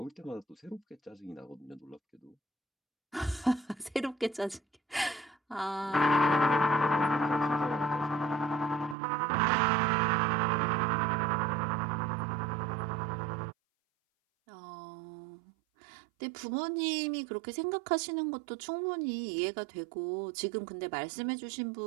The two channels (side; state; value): left; drops out; at 9.0 s